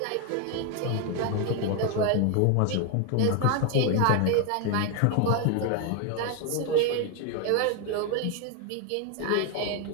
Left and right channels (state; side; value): different; both; correlation 0.01